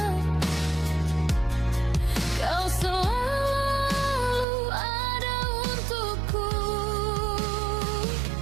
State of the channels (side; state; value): left; drops out; at 4.5 s